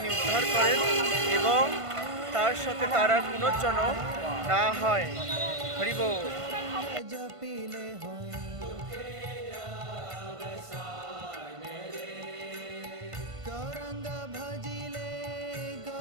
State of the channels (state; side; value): late; left; 1.5 ms